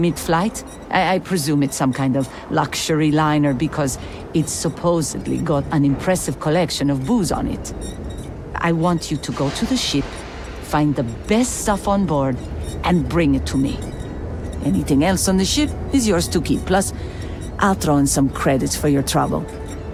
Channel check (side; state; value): both; identical; correlation 1.00